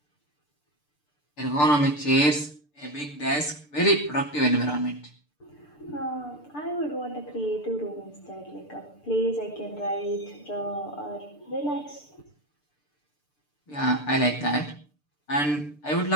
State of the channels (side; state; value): right; late; 6.8 ms